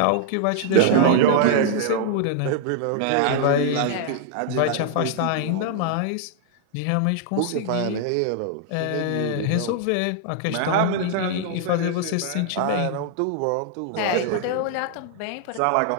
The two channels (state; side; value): different; both; correlation 0.00